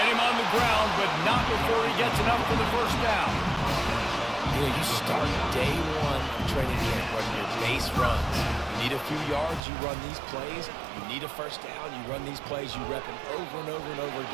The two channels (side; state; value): left; drops out; at 9.7 s